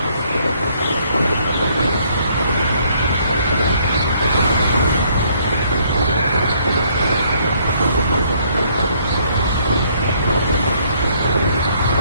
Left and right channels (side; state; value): both; inverted; correlation -0.66